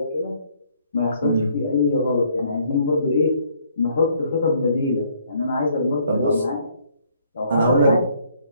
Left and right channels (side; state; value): both; inverted; correlation -0.65